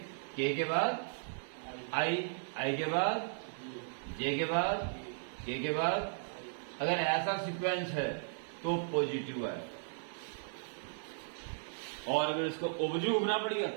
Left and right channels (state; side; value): silent; left; 54 dB below the other